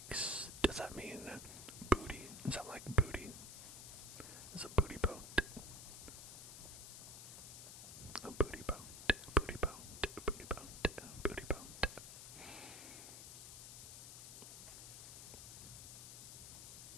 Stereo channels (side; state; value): left; noise; hiss, 11 dB below the sound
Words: Does that mean booty? Is that like booty? It's a booty boat. A booty boat. Booty boat. Booty boat. Booty boat.